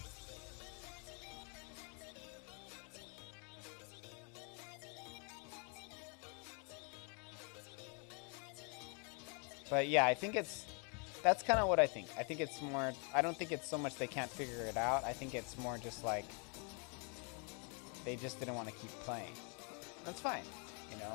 But yeah, I think that's kind of what I think. I think it's more, I don't think it's so much they can't figure it out. I think it's more just like they just didn't want to keep playing. That's fine, you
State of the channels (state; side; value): quieter; right; 36.6 dB